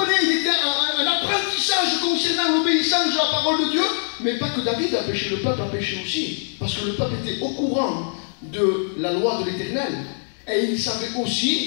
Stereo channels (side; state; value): right; silent; digital silence